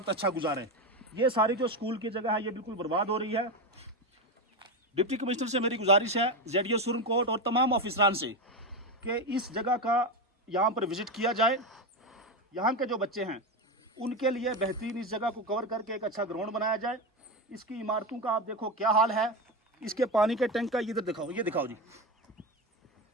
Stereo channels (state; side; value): normal; both; correlation 0.15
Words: अच्छा गुजारें। ये सारी जो स्कूल की जगह है ये बिल्कुल बर्बाद हो रही है। डिप्टी कमिश्नर से मेरी गुजारिश है, ZDO सुरनकोट और तमाम ऑफिसरान से, कि इस जगह का यहाँ पर विज़िट किया जाए। यहाँ के जो बच्चे हैं उनके लिए बेहतरीन इस जगह को कवर करके एक अच्छा ग्राउंड बनाया जाए। इसकी इमारतों का आप देखो क्या हाल है। इसके पानी के टैंक का इधर दिखाओ, ये दिखाओ जी,